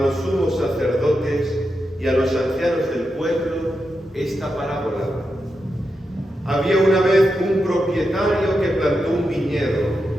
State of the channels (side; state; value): both; normal; correlation 0.87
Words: sumos sacerdotes y a los ancianos del pueblo esta parábola. Había una vez un propietario que plantó un viñedo,